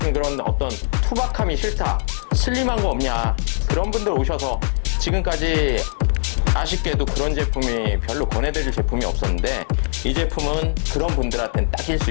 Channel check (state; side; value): silent; right; digital silence